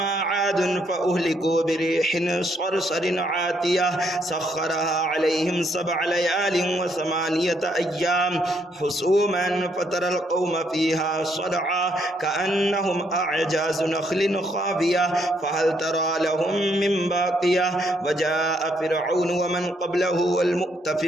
عاد فأهلكوا بريح صرصر عاتية سخرها عليهم 7 ليال و8 أيام حسوما فترى القوم فيها صرعى كأنهم أعجاز نخل خاوية فهل ترى لهم من باقية وجاء فرعون ومن قبله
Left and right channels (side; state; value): both; normal; correlation 0.72